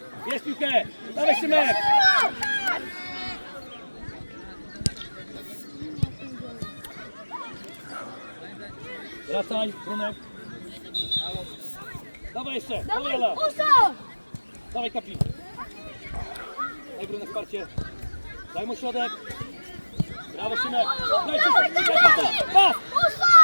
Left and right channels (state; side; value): inverted; both; correlation -1.00